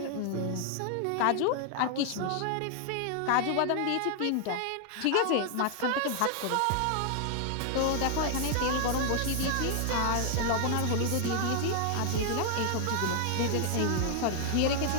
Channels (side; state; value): both; different; correlation 0.00